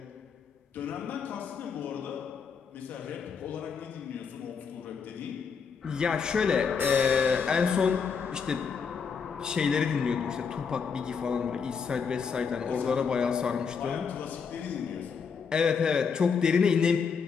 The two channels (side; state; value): right; quieter; 6.1 dB